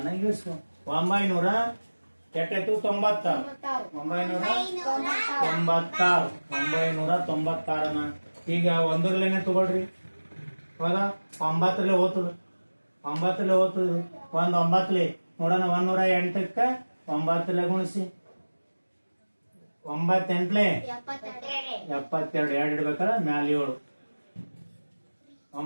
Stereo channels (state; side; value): inverted; both; correlation -1.00